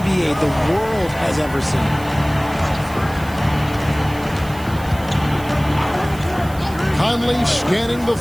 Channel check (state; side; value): noise; right; hiss, 19 dB below the sound